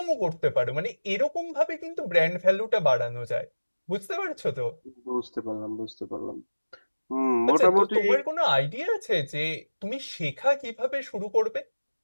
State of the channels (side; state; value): both; inverted; correlation -1.00